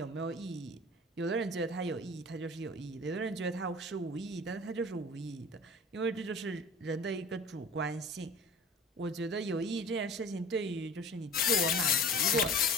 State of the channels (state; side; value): normal; both; correlation 0.41